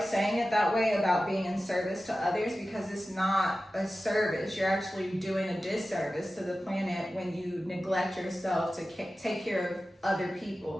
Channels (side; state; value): both; normal; correlation 0.94